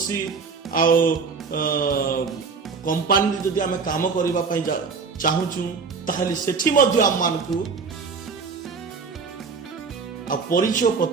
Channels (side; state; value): left; quieter; 5.1 dB